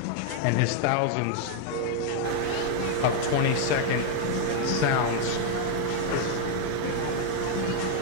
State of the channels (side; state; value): both; different; correlation 0.00